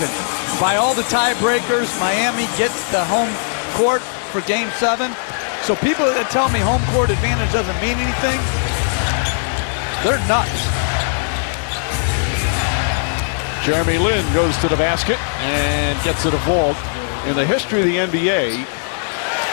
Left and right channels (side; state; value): right; silent; digital silence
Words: By all the tiebreakers, Miami gets the home court for Game 7. So people that tell me home court advantage doesn't mean anything, they're nuts. Jeremy Lin goes to the basket and gets it a vault. In the history of the NBA,